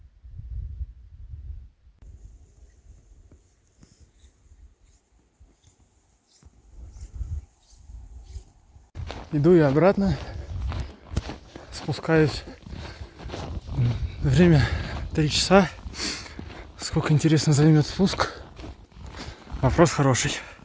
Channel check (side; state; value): both; identical; correlation 1.00